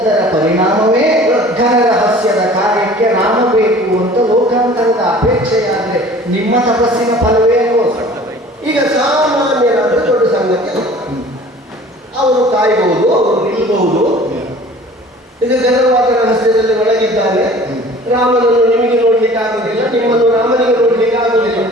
ಪರಿಣಾಮವೇ ಘನ ರಹಸ್ಯದ ಕಾರ್ಯಕ್ಕೆ ರಾಮ ಬೇಕು ಅಂತ ಲೋಕಾಂತರದ ಅಪೇಕ್ಷೆಯಾದರೆ ನಿಮ್ಮ ತಪಸ್ಸಿನ ಫಲವೇ ಅಲ್ವೋ? ಈಗ ಸಾಮಾನ್ಯರಾದ ದೊಡ್ಡ ಸಂಗತಿ ಅವರು ಕಾಯಬಹುದು, ಅವರು ನಿಲ್ಲಬಹುದು. ಇದು ಘನವಾದ ರಹಸ್ಯದಲ್ಲಿ ಒಳಗಿದ್ದಾನೆ. ರಾಮನನ್ನು ನಿಮಗೆ ನೋಡ್ಲಿಕ್ಕೆ ಆಗುದಿಲ್ಲ, ನಿಮ್ಮನ್ನು ರಾಮನಿಗೆ ನೋಡ್ಲಿಕ್ಕೆ ಆಗುದಿಲ್ಲ.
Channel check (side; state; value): both; normal; correlation 0.47